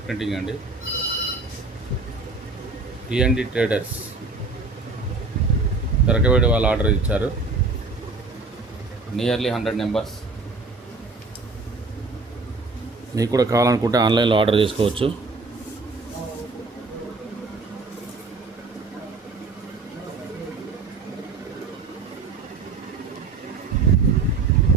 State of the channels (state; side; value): quieter; left; 3.8 dB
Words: ప్రింటింగ్ అండి. టీఎన్డి ట్రేడర్స్ తెరకవేడి వాళ్ళు ఆర్డర్ ఇచ్చారు. Nearly 100 numbers. మీకు కూడా కావాలనుకుంటే ఆన్లైన్లో ఆర్డర్ చేసుకోవచ్చు.